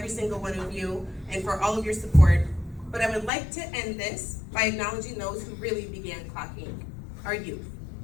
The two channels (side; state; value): right; drops out; at 3.3 s